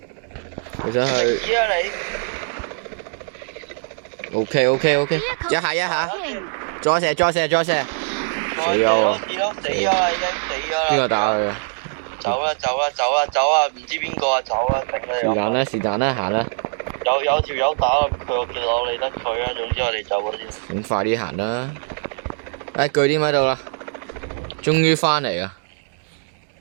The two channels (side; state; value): left; silent; digital silence